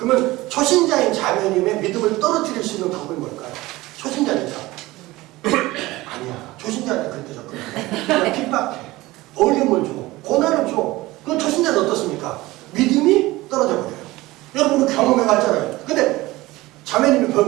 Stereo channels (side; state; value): left; quieter; 19.2 dB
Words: 초신자인 자매님의 믿음을 떨어뜨릴 수 있는 방법이 뭘까요? 초신자니까. 아니야. 초신자한테 그렇게 접근해. 그냥 핍박해. 어려움을 줘. 고난을 줘. 그럼 초신자는 어떻습니까? 믿음이 떨어져 버려요. 여러분 경험해봤잖아요. 근데 자매님이